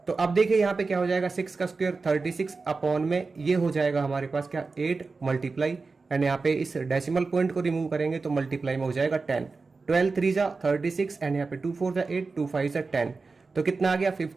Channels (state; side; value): quieter; left; 4.1 dB